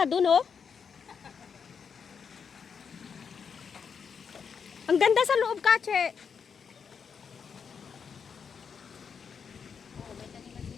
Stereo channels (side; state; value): right; quieter; 6.4 dB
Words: dun, oh. Ang ganda sa loob, Kache.